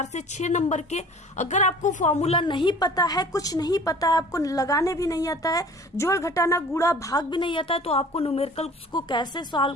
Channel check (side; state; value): both; normal; correlation 0.47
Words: से 6 नंबर के। अगर आपको फॉर्मूला नहीं पता है, कुछ नहीं पता है, आपको लगाने भी नहीं आता है, जोड़ घटाना गुणा भाग भी नहीं आता है, तो आपको न्यूमेरिकल को कैसे